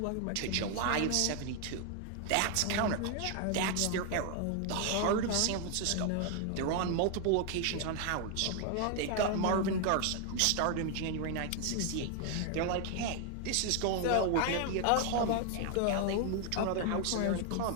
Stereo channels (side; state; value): both; different; correlation 0.00